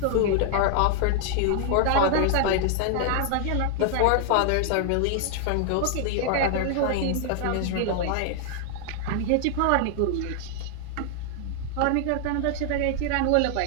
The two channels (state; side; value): different; both; correlation 0.00